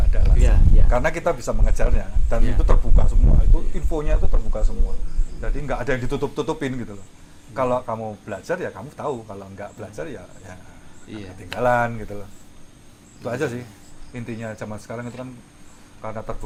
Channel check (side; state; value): both; identical; correlation 1.00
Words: ada alasan. Iya, iya. Karena kita bisa mengejarnya dan Iya. itu terbuka semua, itu infonya itu terbuka semua. Jadi nggak ada yang ditutup-tutupin gitu loh. Kalau kamu belajar ya kamu tahu, kalau nggak belajar ya Iya. ketinggalan gitu loh. Itu aja sih intinya zaman sekarang itu kan, karena